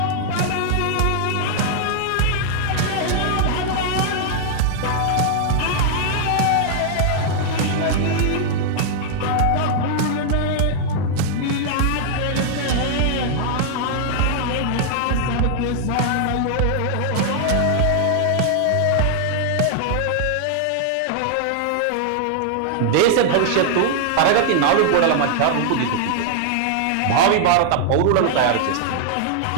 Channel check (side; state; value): both; different; correlation -0.01